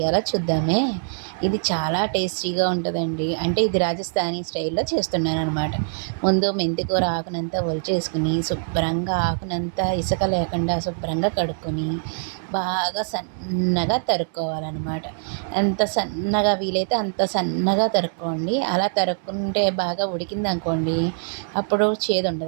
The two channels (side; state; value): left; silent; 62 dB below the other